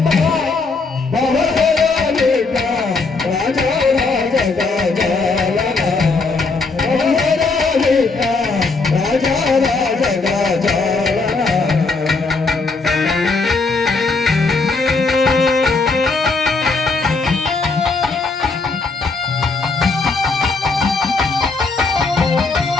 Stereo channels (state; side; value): quieter; right; 4.0 dB